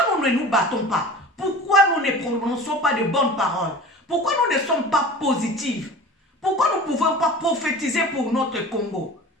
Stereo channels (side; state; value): both; normal; correlation 0.38